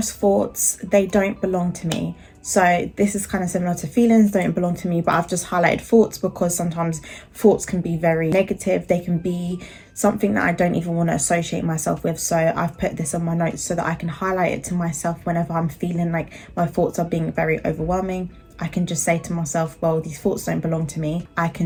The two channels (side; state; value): both; identical; correlation 1.00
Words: thoughts. They don't belong to me. So this is kind of similar to feelings don't belong to me, but I've just highlighted thoughts because sometimes thoughts can be very negative. They can be something that I don't even want to associate myself with. So I've put this on my notes so that I can highlight it to myself whenever I'm feeling like my thoughts are being very overwhelming. I can just say to myself, well, these thoughts don't belong to me. I